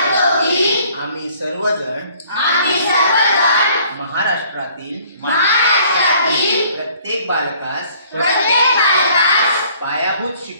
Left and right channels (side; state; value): both; inverted; correlation -0.57